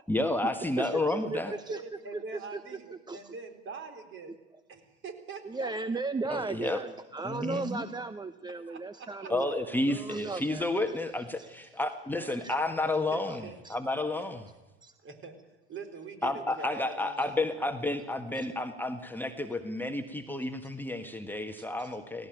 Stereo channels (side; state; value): both; normal; correlation 0.68